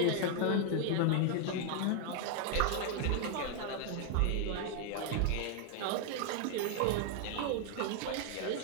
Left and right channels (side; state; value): both; different; correlation 0.00